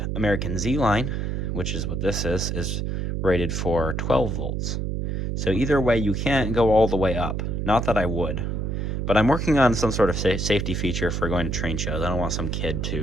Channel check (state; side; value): noise; right; hum, 1 dB below the sound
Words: American Z-Line, which is what this is rated for 12 volts. So either way, you can't go all the way up. Not that I would. But I'm working on some sort of safety feature for going to train shows. I don't want some kid